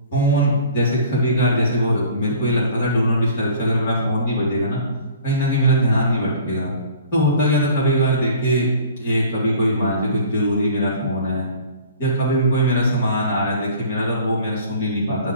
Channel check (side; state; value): both; inverted; correlation -0.48